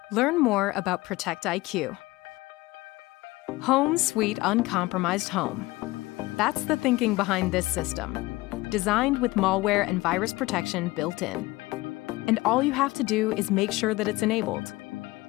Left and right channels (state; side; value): quieter; right; 20.4 dB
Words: Learn more about ProtectIQ. Home Sweet Uncompromised Home. That's the thinking behind this system. Designed with malware and virus protection built in. And all you have to do is make sure that it's enabled.